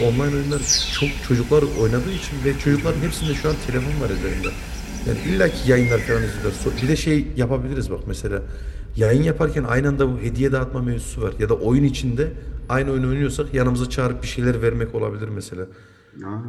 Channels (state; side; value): identical; both; correlation 1.00